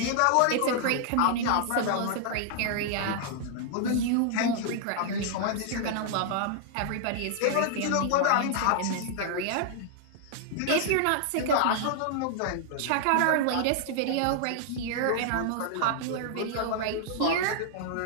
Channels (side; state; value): both; different; correlation -0.01